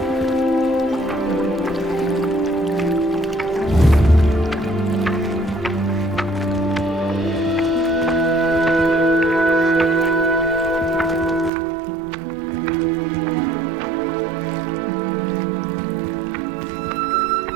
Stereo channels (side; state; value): left; drops out; at 11.5 s